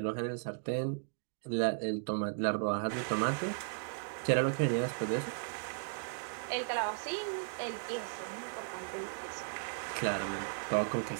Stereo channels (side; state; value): left; silent; digital silence